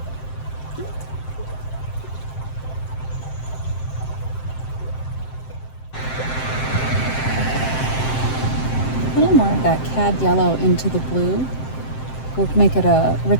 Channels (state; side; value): late; right; 7.7 ms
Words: A little more of that cad yellow into the blue will make it a